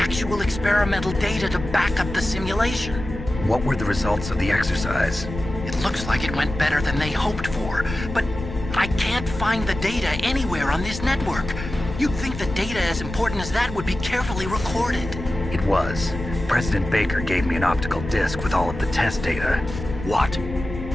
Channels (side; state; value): left; noise; rumble, 9 dB below the sound